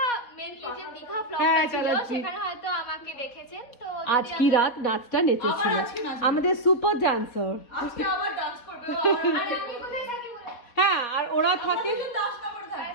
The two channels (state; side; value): late; right; 4.3 ms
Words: মেনলি যে দীঘা ব্লগটা হ্যাঁ, ছিল চালাচ্ছি। সেখানে হয়তো আমাকে দেখেছেন। তো আজ কি রাত নাচটা নেচেছিল আমাদের সুপার ডান্সার। আজকে আবার ডান্স করবে আরে আমি কোথায় থাকি বলে হ্যাঁ, আর ওরা থাকে দাসনগর